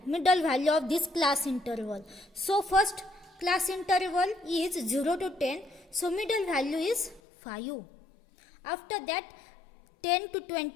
value of this class interval. So first class interval is 0 to 10, so middle value is 5. After that 10 to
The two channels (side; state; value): right; drops out; at 7.2 s